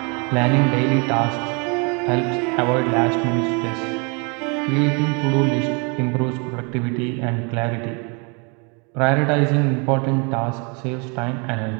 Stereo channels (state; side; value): quieter; left; 33.6 dB